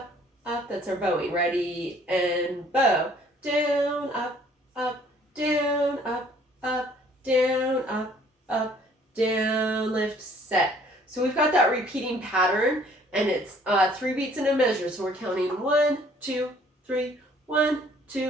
up, that's our bowing. Ready, and bow. Down, up, down, up, down, up, down, lift, set. So we've got that repeating pattern, and it's 3 beats in a measure. So we're counting 1, 2, 3, 1,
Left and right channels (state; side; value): normal; both; correlation 0.58